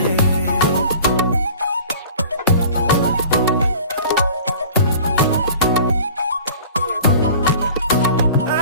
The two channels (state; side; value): inverted; both; correlation -0.44